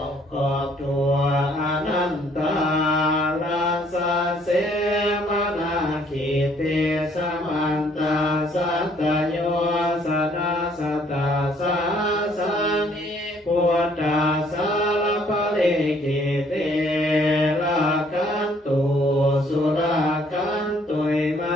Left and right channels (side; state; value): both; normal; correlation 0.63